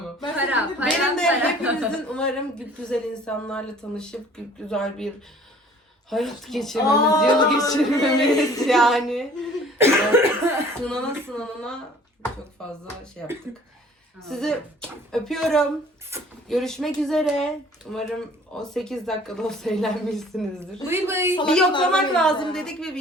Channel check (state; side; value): normal; both; correlation 0.52